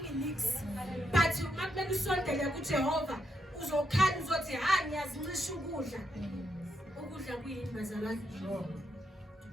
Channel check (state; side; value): normal; both; correlation 0.80